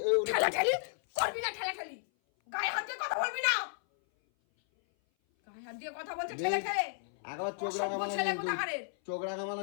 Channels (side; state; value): right; silent; 56 dB below the other